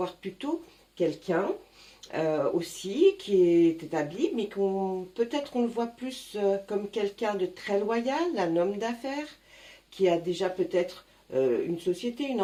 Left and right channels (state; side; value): identical; both; correlation 1.00